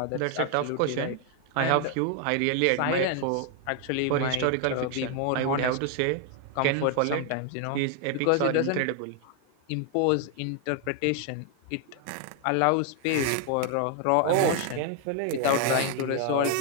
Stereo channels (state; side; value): different; both; correlation 0.00